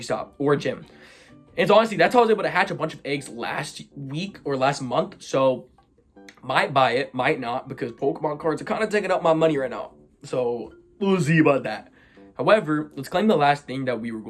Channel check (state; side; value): identical; both; correlation 1.00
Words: or a gym. And so honestly, that's how I was able to hatch a bunch of eggs last week or last month. So Might buy it, might not, because Pokemon cards are kind of taking up my money right now. So we'll see about that. However, let's claim the last thing that we were